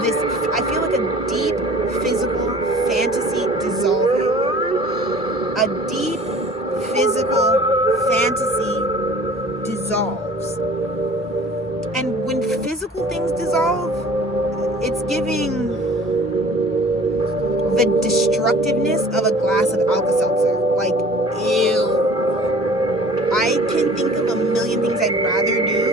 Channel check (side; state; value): both; normal; correlation 0.47